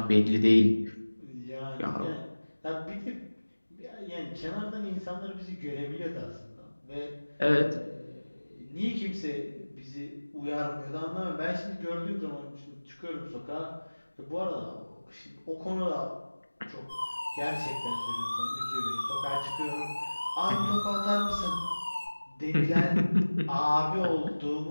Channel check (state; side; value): inverted; both; correlation -1.00